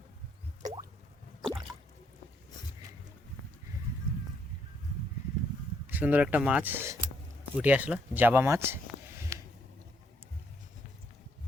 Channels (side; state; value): both; normal; correlation 0.72